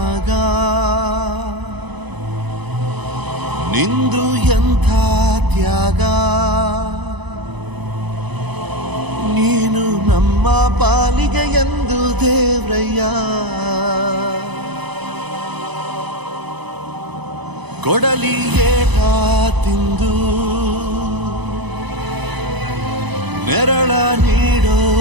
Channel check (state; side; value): late; left; 1.0 ms